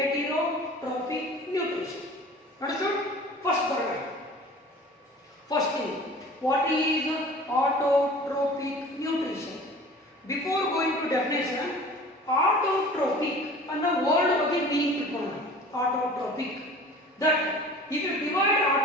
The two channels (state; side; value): normal; both; correlation 0.43